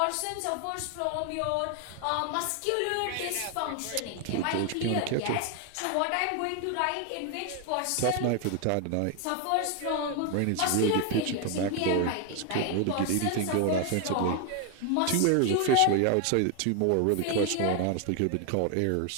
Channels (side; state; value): both; different; correlation 0.01